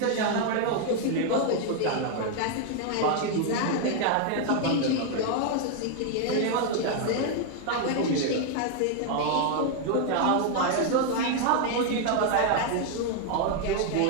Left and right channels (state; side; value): different; both; correlation 0.00